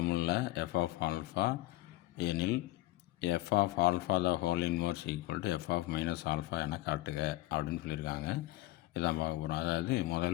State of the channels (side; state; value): right; quieter; 17.7 dB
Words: f of alpha எனில் f of alpha the whole inverse equal to f of minus alpha என காட்டுக அப்படின்னு சொல்லியிருக்காங்க. இதான் பார்க்க போகிறோம். அதாவது